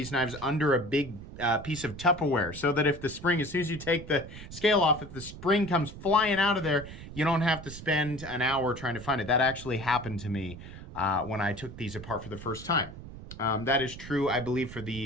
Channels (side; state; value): right; noise; rumble, 13 dB below the sound